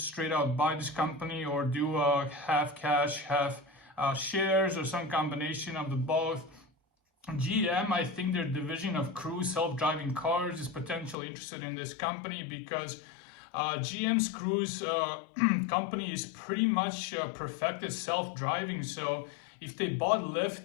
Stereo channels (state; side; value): drops out; right; at 11.2 s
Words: straight out buy this company or do half cash, half shares or some combination of the both. GM, I think their division of Cruise self-driving cars is potentially interested in this company because GM's Cruise company is pretty much perfected self-driving. So if they bought